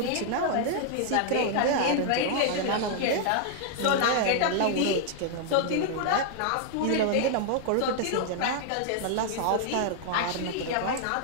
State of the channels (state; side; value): different; both; correlation -0.01